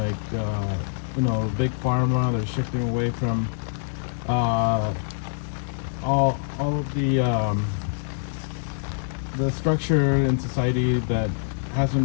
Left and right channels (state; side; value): silent; right; digital silence